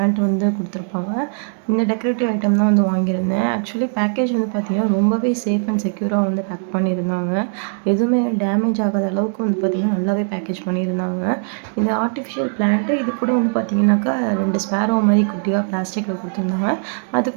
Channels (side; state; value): left; silent; digital silence